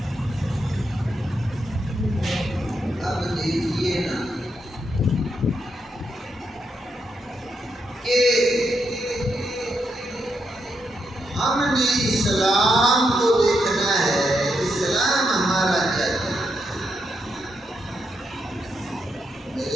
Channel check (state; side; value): normal; both; correlation 0.81